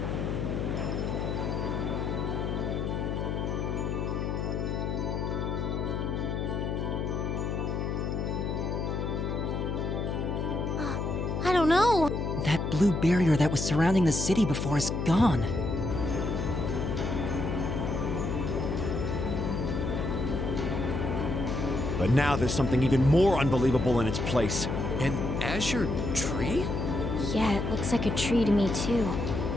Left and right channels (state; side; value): noise; left; hum, 1 dB below the sound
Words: I don't know. That blue barrier that was surrounding the city before is gone. But now there's something even more unbelievable in its place. An azure tree? Yeah, it looks like a tree to me too.